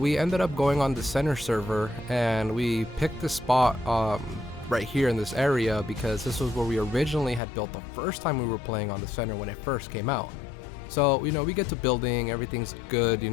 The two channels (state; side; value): drops out; right; at 7.4 s